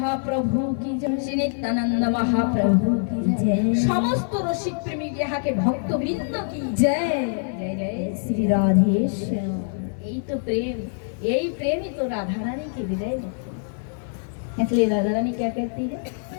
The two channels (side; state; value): right; silent; 56 dB below the other